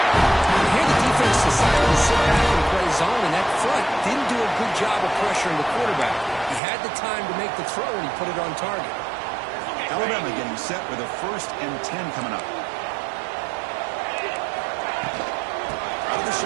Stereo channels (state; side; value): drops out; left; at 6.6 s